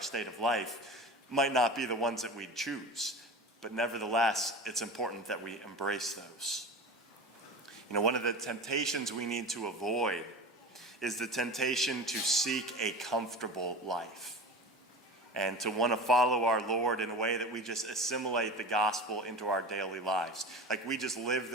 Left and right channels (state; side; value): normal; both; correlation 0.33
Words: state of life might not be the ones that we choose, but nevertheless, it's important that we embrace those. One of the temptations we need to avoid is the temptation to seek a comfortable life and to want to follow our Lord in a way that we just assimilate the gospel into our daily lives. Like we just live